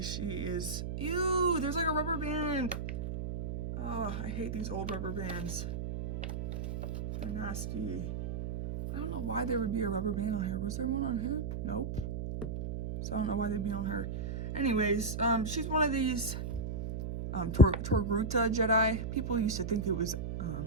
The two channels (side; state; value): right; noise; hum, 4 dB below the sound